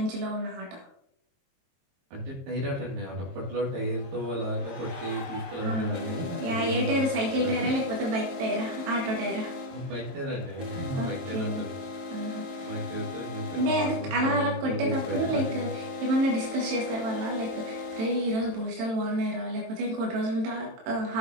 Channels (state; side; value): late; left; 22 ms